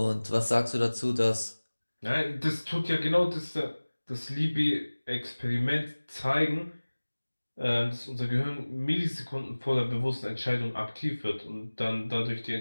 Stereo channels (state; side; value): inverted; both; correlation -1.00